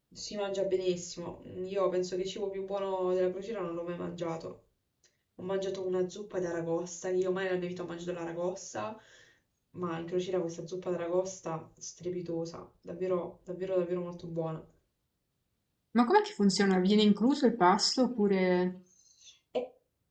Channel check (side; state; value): both; identical; correlation 1.00